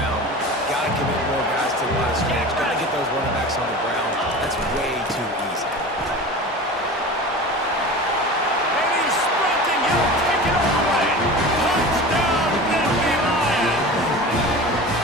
Got to commit more guys to the line of scrimmage. Got to get those running backs on the ground. That's way too easy. And he's sprinting. He'll take it all the way. Touchdown, Nittany Lions.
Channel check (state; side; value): normal; both; correlation 0.34